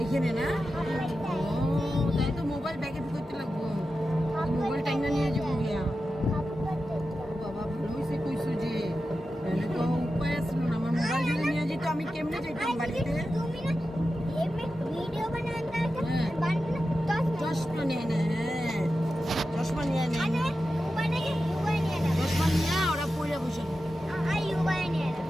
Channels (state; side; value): normal; both; correlation 0.91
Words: এখানে না তাই তো মোবাইল ব্যাগে ঢুকাইতে লাগবো মোবাইল টাইনা নিয়ে যাবো গিয়া বাবা ভালো হয়েছে কইছো যে তো উপায় আসল না আমার মোবাইল যদি নিয়ে যেত আমি কেমনে যাইতাম বাড়িতে চশমা নিয়ে নে চশমা নিয়ে নে চশমা নিয়ে ওরা পড়ে বসে